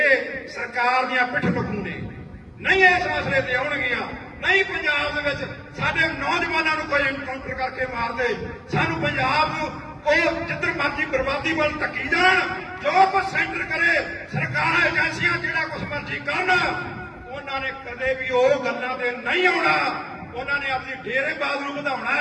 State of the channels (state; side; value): identical; both; correlation 1.00